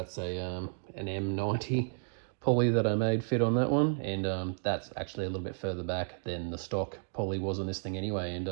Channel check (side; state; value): left; silent; digital silence